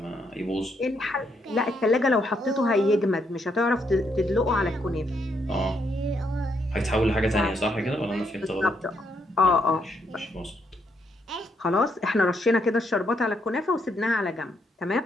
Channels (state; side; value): normal; both; correlation 0.76